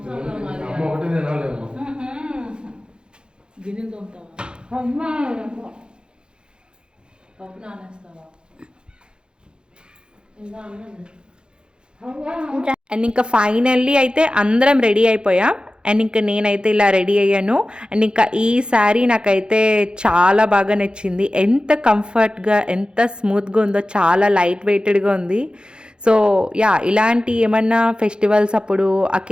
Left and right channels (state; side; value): late; left; 0.050 ms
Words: గిన్నెలు తోముతావా? పప్పు నానేస్తావా? ఇంకా అన్నది. అండ్ ఇంకా ఫైనల్లీ అయితే అందరం రెడీ అయిపోయాం. అండ్ ఇంకా నేనైతే ఇలా రెడీ అయ్యాను. అండ్ ఇంకా ఈ శారీ నాకైతే చాలా బాగా నచ్చింది. ఎంత కంఫర్ట్గా ఎంత స్మూత్గా ఉందో, చాలా లైట్ వెయిటెడ్గా ఉంది. సో యా, ఇలాంటి ఏమన్నా ఫెస్టివల్స్ అప్పుడు,